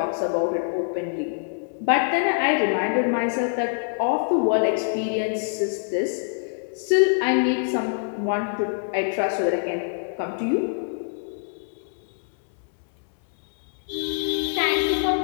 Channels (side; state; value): right; silent; digital silence